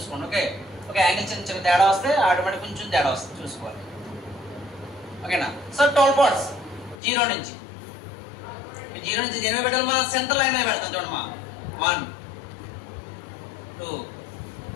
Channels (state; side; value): drops out; right; at 7.0 s